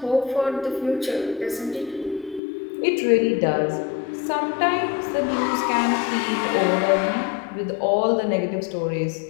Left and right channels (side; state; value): right; drops out; at 2.4 s